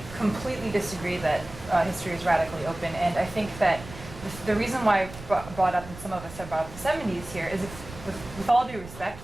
completely disagree that history is radically open, and I think that the reason why I brought up, and some of us have brought up the 70s here, is with all due respect,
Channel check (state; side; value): noise; right; rumble, 15 dB below the sound